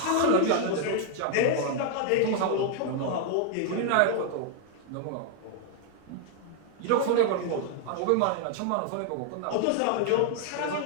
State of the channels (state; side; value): different; both; correlation 0.00